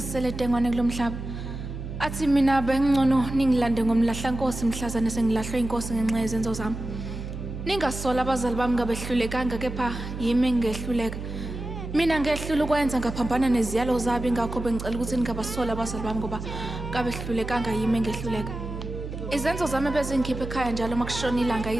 dengwane kulomhlaba. Athi mina bengcono ningilande ngoMlahlankosi mhlazane sengilahlwe inkosi ngenxa yezenzo zami. Ningasola abazali bami ngabehlulekanga kepha yimi engehluleka. Mina ngehlula ukwenza ngaphambana neziyalo zabo ingakho bengicela ukuthi ningabasola abazali bami ngoba ngabehlulekanga yimi engehluleka. Izenzo zami bezingikhipha ekhaya njalo makushona ilanga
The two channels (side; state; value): right; noise; hum, 7 dB below the sound